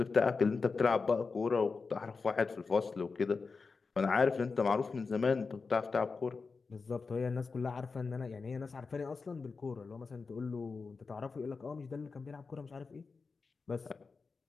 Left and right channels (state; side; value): quieter; right; 4.6 dB